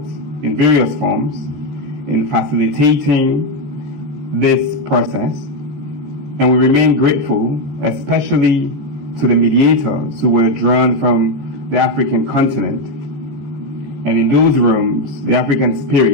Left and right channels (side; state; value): left; late; 14 ms